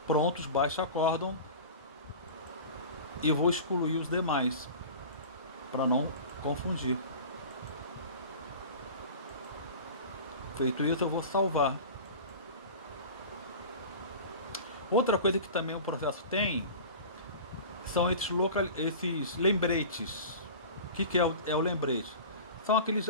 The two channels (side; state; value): both; inverted; correlation -0.36